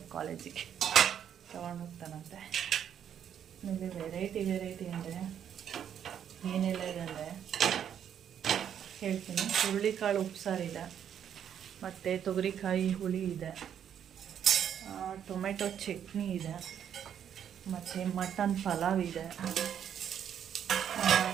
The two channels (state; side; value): quieter; left; 9.0 dB